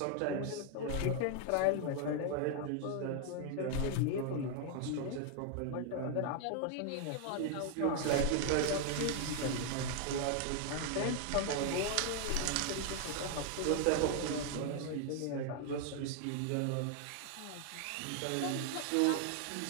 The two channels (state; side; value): different; both; correlation 0.00